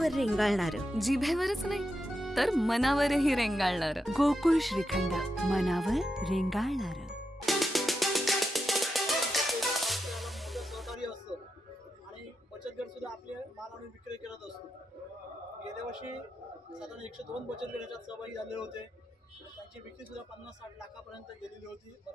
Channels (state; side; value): normal; both; correlation 0.87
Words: रेंगाळणार. जिभेवरच नाही तर मनावरही रेंगाळणार. गोकुळ श्रीखंड, मनावर रेंगाळणार. सहकारी असतं आणि बचत गट सुद्धा आपले माल आणि विक्री करत असतो. गेल्या वर्षी साधारण 102 बचत गट याच्यात सहभागी झालेले होते. त्यांची विक्री सुद्धा 50-60 लाखापर्यंत गेलेली होती.